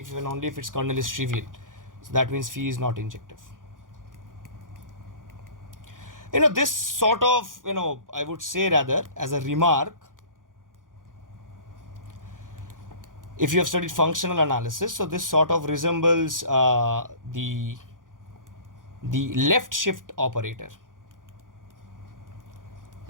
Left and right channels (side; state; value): left; late; 0.89 ms